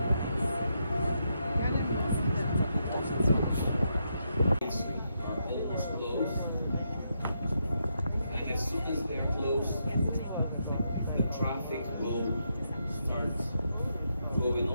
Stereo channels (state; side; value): inverted; both; correlation -0.81